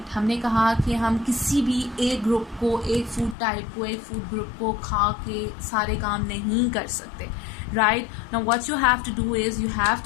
हमने कहा कि हम किसी भी एक ग्रुप को, एक फूड टाइप को, एक फूड ग्रुप को खा के सारे काम नहीं कर सकते, right. Now what you have to do is you have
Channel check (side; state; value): right; drops out; at 3.4 s